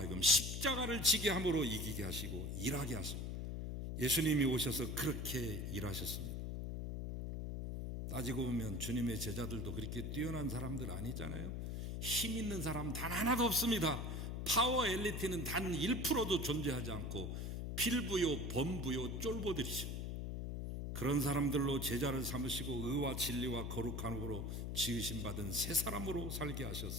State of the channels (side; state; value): left; noise; hum, 3 dB below the sound